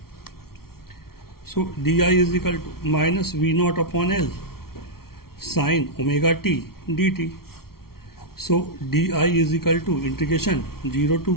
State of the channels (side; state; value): right; late; 0.94 ms